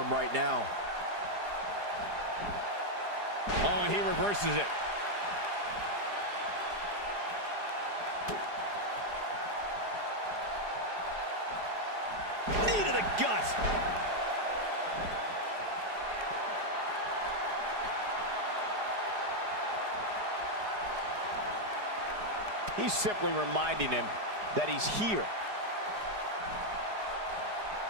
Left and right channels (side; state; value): left; late; 4.9 ms